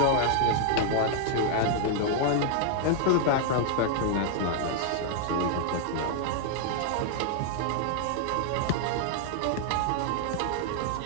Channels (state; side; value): different; both; correlation 0.00